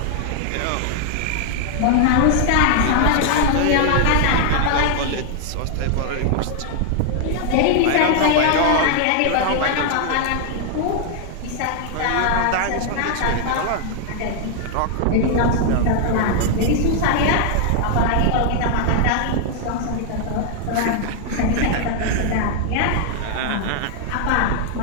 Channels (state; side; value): different; both; correlation 0.00